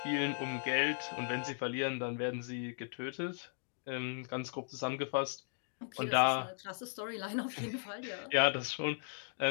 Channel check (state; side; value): silent; right; digital silence